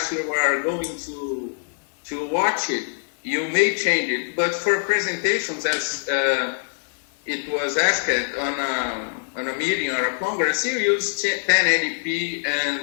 you are going to watch it, you may change it. But for presentations, as it was asked on a meeting or a congress, you use 1080p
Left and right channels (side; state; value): right; silent; digital silence